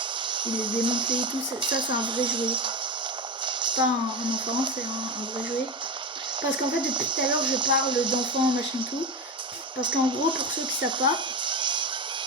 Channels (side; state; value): both; normal; correlation 0.19